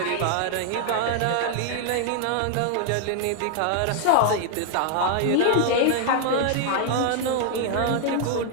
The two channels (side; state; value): both; different; correlation 0.00